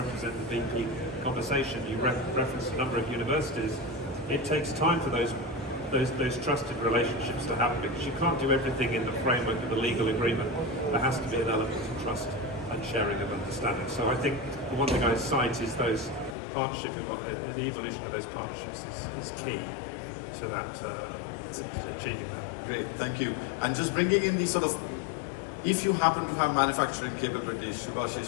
the VP conversation, you reference a number of universities. It takes time for those trusted relationships to happen, because you can't do everything in the framework of a legal agreement. There has to be an element of trust and sharing of understanding. So I think the one thing I cite is those partnership, the evolution of those partnerships is key to that, to achieving that. Great, thank you. And just bringing in the sort of, if you happen to have manufacturing capabilities, Subhashish,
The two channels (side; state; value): right; drops out; at 16.4 s